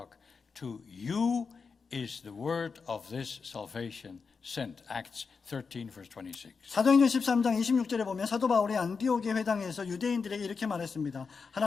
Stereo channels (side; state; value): right; quieter; 5.2 dB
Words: "To you is the word of this salvation sent." Acts 13, verse 26. 사도행전 13장 26절에 보면 사도 바울이 안디옥의 회당에서 유대인들에게 이렇게 말했습니다.